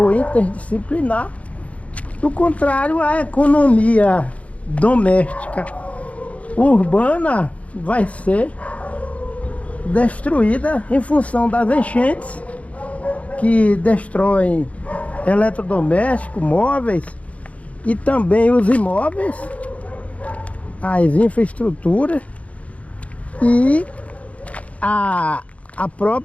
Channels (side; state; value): right; late; 0.066 ms